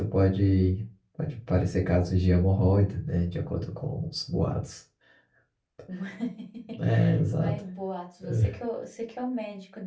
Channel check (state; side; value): identical; both; correlation 1.00